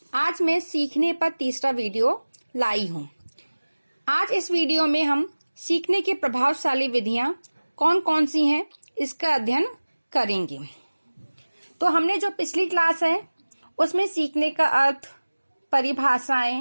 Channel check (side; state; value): both; inverted; correlation -1.00